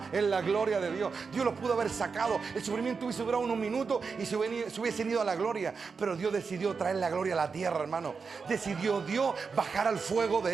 en la gloria de Dios. Dios los pudo haber sacado. El sufrimiento hubiese durado unos minutos y se hubiesen ido a la gloria. Pero Dios decidió traer la gloria a la tierra, hermano. Decidió Dios bajar al fuego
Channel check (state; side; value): quieter; left; 5.2 dB